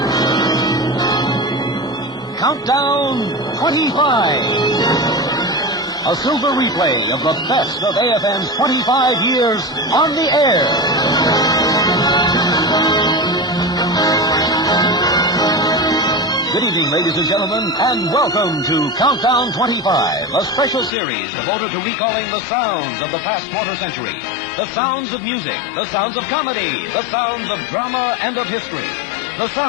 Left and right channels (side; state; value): right; drops out; at 20.9 s